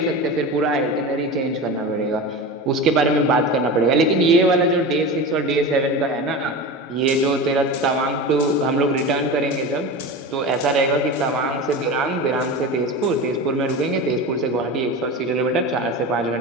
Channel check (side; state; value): both; normal; correlation 0.27